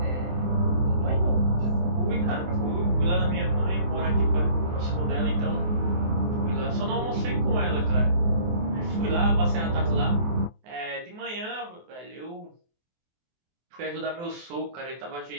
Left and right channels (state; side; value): late; left; 24 ms